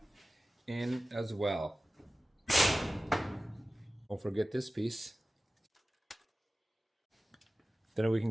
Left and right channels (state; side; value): normal; both; correlation 0.96